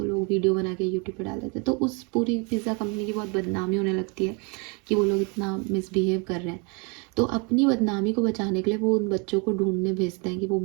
लोग वीडियो बना के यूट्यूब पे डाल देते हैं। तो उस पूरी पिज़्ज़ा कंपनी की बहुत बदनामी होने लगती है कि वो लोग इतना मिसबिहेव कर रहे हैं। तो अपनी बदनामी को बचाने के लिए वो उन बच्चों को ढूंढने भेजते हैं कि वो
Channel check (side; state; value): left; quieter; 32.2 dB